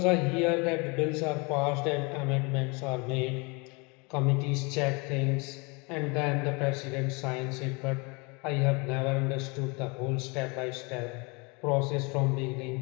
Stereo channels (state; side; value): quieter; right; 29.3 dB